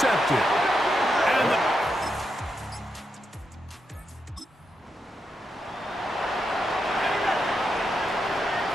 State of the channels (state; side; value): normal; both; correlation 0.84